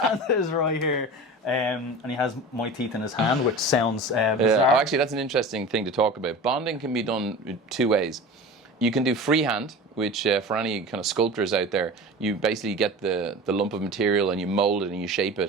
Santa is right here. And he has my teeth in his hand, which sounds bizarre. Oh, actually, that's an interesting thing to talk about. Bonding can be done two ways. You can do freehand, which for any kind of sculptors out there, you basically get the lump of material and you mold it and you shape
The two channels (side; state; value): both; normal; correlation 0.34